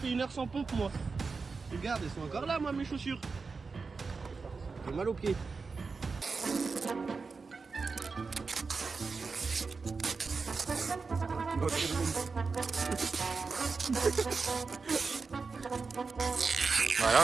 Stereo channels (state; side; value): quieter; left; 4.6 dB